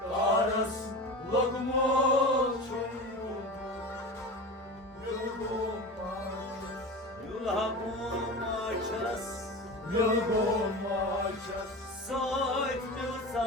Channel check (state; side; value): normal; both; correlation 0.29